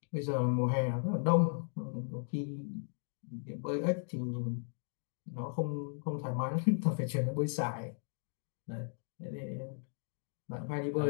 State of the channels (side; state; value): right; silent; digital silence